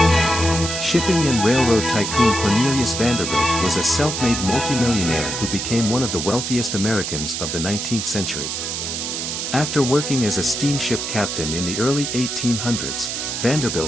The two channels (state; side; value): noise; right; hiss, 3 dB below the sound